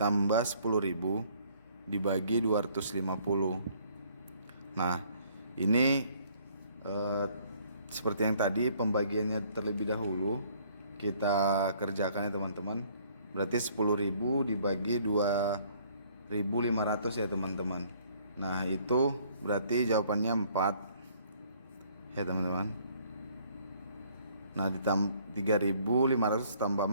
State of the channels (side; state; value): both; inverted; correlation -0.61